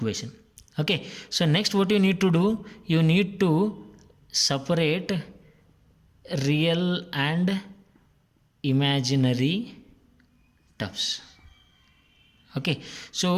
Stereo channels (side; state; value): both; identical; correlation 1.00